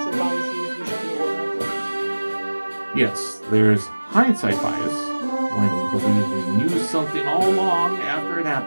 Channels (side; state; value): both; inverted; correlation -1.00